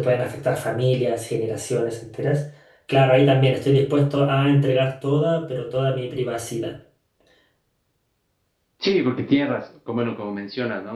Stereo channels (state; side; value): identical; both; correlation 1.00